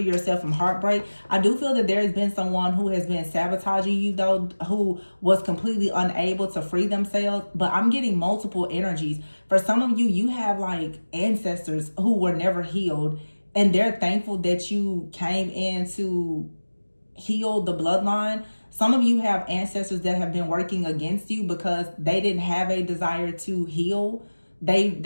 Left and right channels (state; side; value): inverted; both; correlation -1.00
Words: yourself from heartbreak. I do feel that there has been someone who has been sabotaging you though, who was completely unable to free themselves. But I'm getting multiple energies. For some of you, you have like ancestors who were never healed, and they're thankful that you came in to heal the bloodline. Some of you have ancestors that have been working against you because they didn't have a desire to heal.